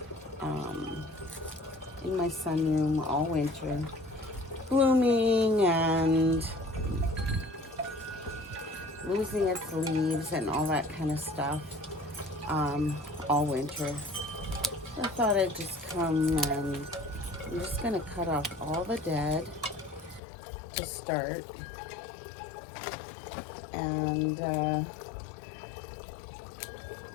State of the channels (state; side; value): drops out; right; at 20.2 s